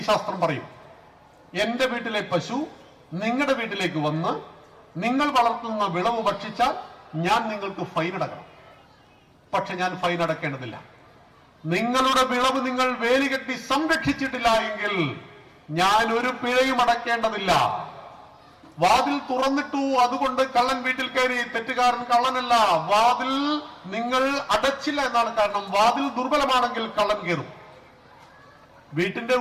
പറയും, എന്റെ വീട്ടിലെ പശു നിങ്ങളുടെ വീട്ടിലേക്ക് വന്ന് നിങ്ങൾ വളർത്തുന്ന വിളവ് ഭക്ഷിച്ചാൽ ഞാൻ നിങ്ങൾക്ക് ഫൈൻ അടക്കണം. പക്ഷെ ഞാൻ ഫൈൻ അടക്കേണ്ടതില്ല. നിങ്ങളുടെ വിളവ് നിങ്ങൾ വേലികെട്ടി സംരക്ഷിച്ചിട്ടില്ല എങ്കിൽ ഞാൻ ഒരു പിഴയും അടക്കേണ്ടതില്ല. വാതിൽ തുറന്നിട്ടു, അതുകൊണ്ട് കള്ളൻ വീട്ടിൽ കയറി. തെറ്റുകാരൻ കള്ളനല്ല, വാതിൽ നിങ്ങൾ അടച്ചില്ല എന്നാണ് കാരണം. വാതിൽ ദുർബലമാണെങ്കിൽ കള്ളൻ കയറും. വീട്ടിന്റെ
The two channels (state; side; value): identical; both; correlation 1.00